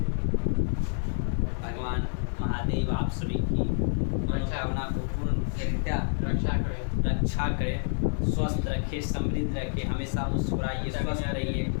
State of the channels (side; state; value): right; silent; 59 dB below the other